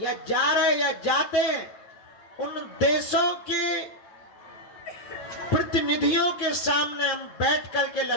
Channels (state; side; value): late; right; 9.1 ms